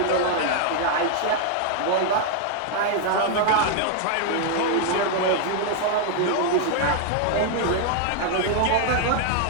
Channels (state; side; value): different; both; correlation 0.00